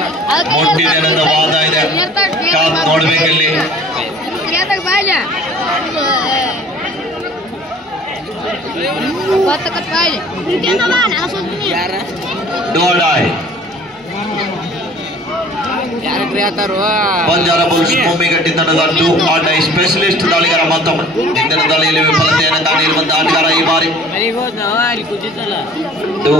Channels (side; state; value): both; normal; correlation 0.49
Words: ವಾದ ಇದೆ, ಕಾದ್ ನೋಡ್ಬೇಕಲ್ಲಿ. ಡೋಡಾಯ್ ಬಂಜಾರ ಬುಲ್ಸ್ ಭೂಮಿಗಟ್ಟಿ ತಂಡದ ಟೂ ಆಟೈ ಸ್ಪೆಷಲಿಸ್ಟ್ ದಾಳಿಗಾರ. ಮತ್ತೊಮ್ಮೆ ಇಂದಿನ ದಾಳಿಯಲ್ಲಿ ವಿಫಲತೆಯನ್ನು ಕಾಣಿರುವಂತಹ ಆಟಗಾರ ಈ ಬಾರಿ. ಟೂ